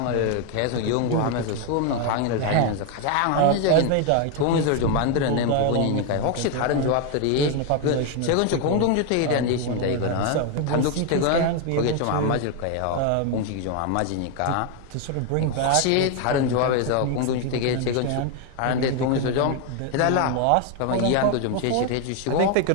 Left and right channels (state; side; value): different; both; correlation 0.01